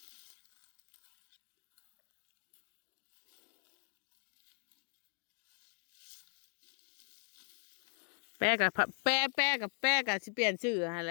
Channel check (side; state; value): right; silent; 51 dB below the other